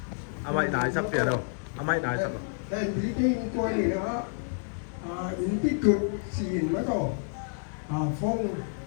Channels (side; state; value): right; silent; digital silence